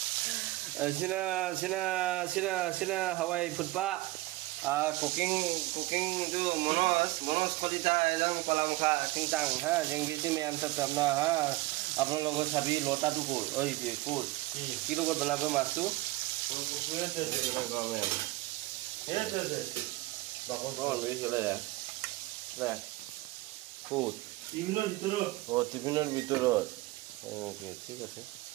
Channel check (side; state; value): left; quieter; 19.7 dB